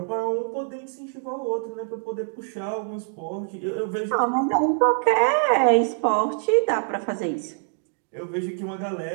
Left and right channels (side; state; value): left; silent; digital silence